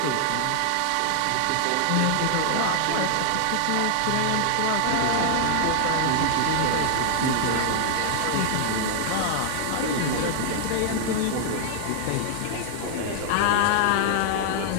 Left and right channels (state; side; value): different; both; correlation 0.00